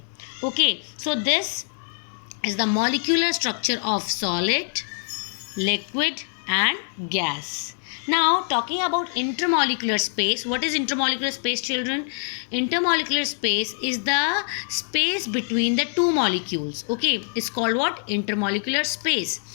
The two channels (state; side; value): silent; right; digital silence